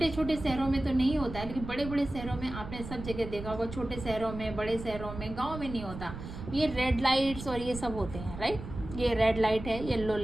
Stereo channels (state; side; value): noise; right; rumble, 10 dB below the sound